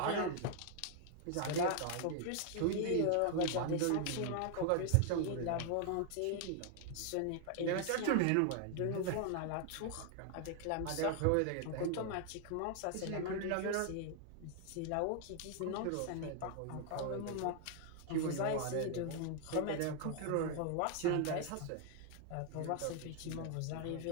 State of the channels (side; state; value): both; different; correlation 0.00